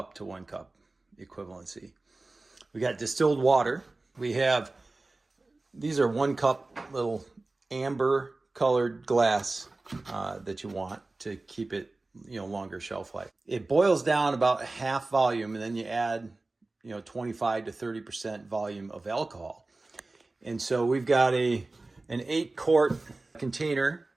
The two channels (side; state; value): left; quieter; 3.2 dB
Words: to 1 cup equivalency. We got distilled water. We have, these are 1 cup little amber colored glass that you want to keep it, longer shelf life. It boils down about half volume, and then you add, 25 to 30% volume of alcohol. And so we've got an 8-quart container